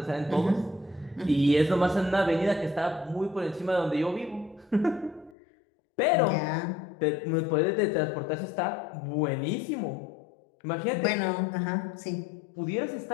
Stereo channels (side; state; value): right; drops out; at 5.4 s